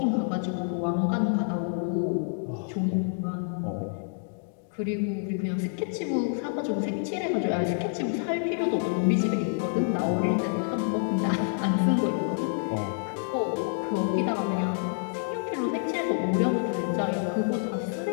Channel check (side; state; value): right; silent; digital silence